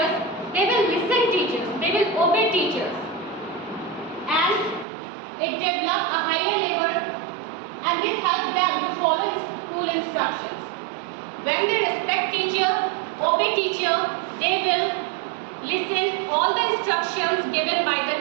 they will listen teachers, they will obey teachers, and it develops a higher level, and this helps them to follow school instructions. When they respect teacher, obey teacher, they will listen all the instructions given by the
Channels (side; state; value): left; drops out; at 4.9 s